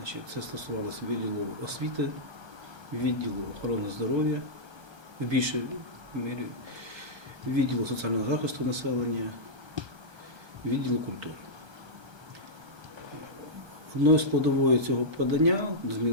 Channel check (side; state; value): left; late; 1.3 ms